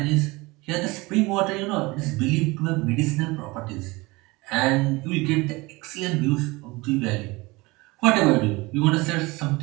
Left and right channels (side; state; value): left; quieter; 23.2 dB